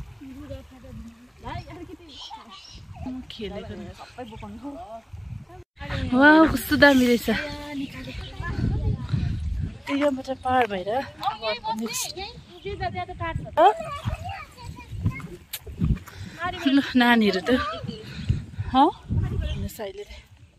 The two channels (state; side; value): identical; both; correlation 1.00